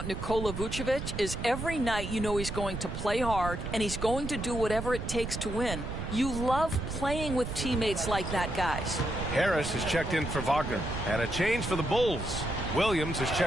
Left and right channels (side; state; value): right; noise; rumble, 6 dB below the sound